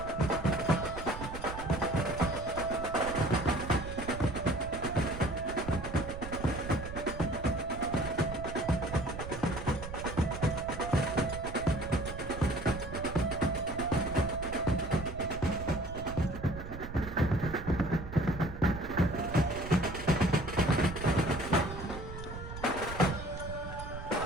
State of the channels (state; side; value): noise; right; rumble, 10 dB below the sound